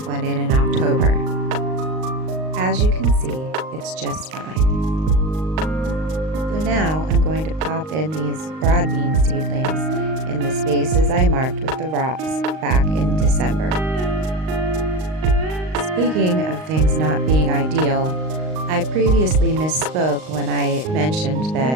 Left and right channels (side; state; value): left; late; 38 ms